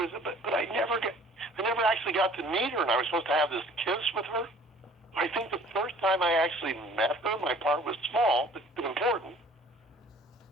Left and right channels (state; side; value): normal; both; correlation 0.52